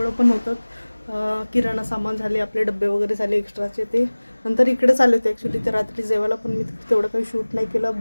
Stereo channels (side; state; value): both; inverted; correlation -1.00